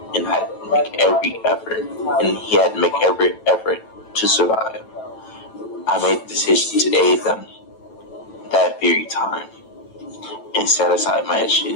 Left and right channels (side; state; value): right; late; 9.1 ms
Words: and had to make every effort to survive. I made the decision to aid them that very time and set aside my